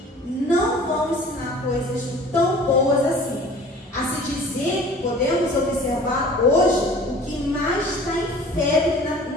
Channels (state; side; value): normal; both; correlation 0.46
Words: não vão ensinar coisas tão boas assim. A se dizer, podemos observar hoje, o que mais está em febre